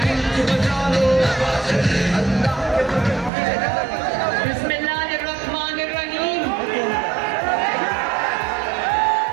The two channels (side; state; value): left; drops out; at 3.3 s